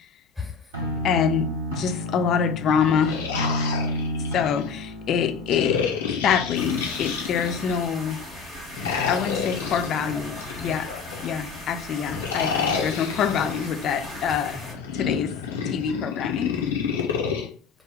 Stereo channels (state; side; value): quieter; right; 5.9 dB